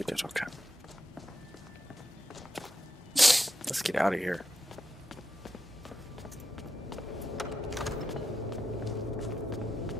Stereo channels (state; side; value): normal; both; correlation 0.87